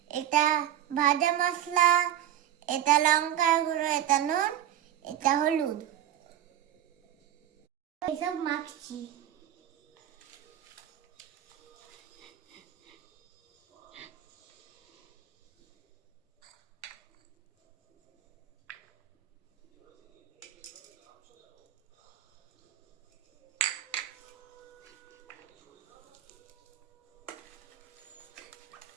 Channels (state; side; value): quieter; left; 11.4 dB